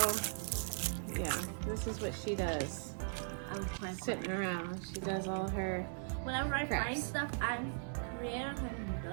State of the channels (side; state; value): left; silent; 52 dB below the other